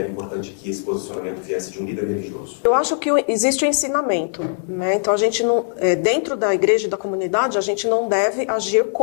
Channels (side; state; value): right; silent; digital silence